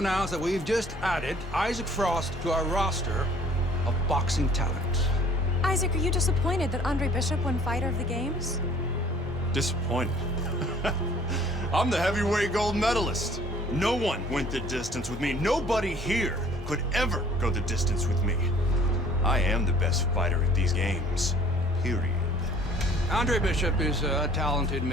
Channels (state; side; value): normal; both; correlation 0.54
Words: that we've just added Isaac Frost to our roster of boxing talent. Isaac, are you disappointed that Andre Bishop won Fighter of the Games? Disappointed. I'm the heavyweight gold medalist. No one went the distance with me. Nobody here could ever go the distance with me. I am the best fighter at these games, period. Andre Bishop is a talented